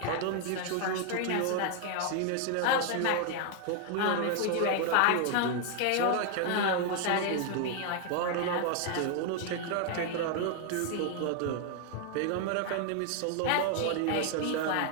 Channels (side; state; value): both; different; correlation 0.00